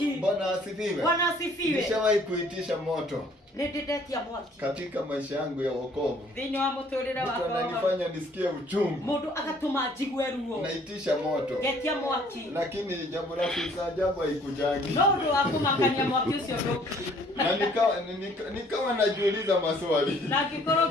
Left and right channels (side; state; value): both; normal; correlation 0.59